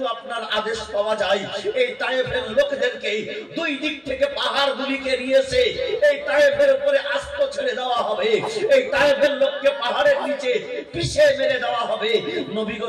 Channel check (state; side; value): identical; both; correlation 1.00